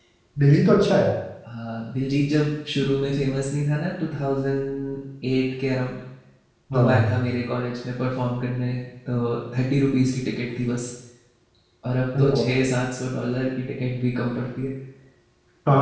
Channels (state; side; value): identical; both; correlation 1.00